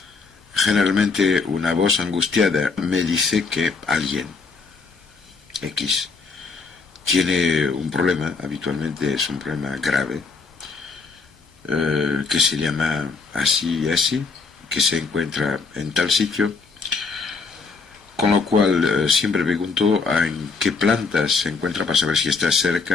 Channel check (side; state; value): right; quieter; 4.5 dB